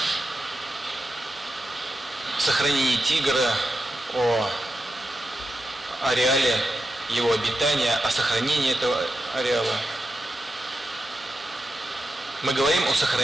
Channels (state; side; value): normal; both; correlation 0.89